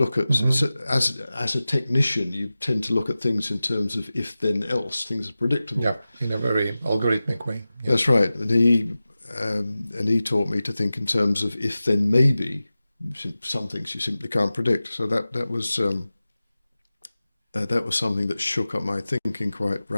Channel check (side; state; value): both; inverted; correlation -0.96